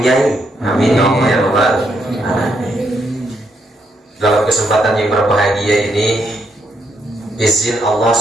amin ya Allah ya Rabbal alamin. Dalam kesempatan yang berbahagia ini, izin Allah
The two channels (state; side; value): normal; both; correlation 0.77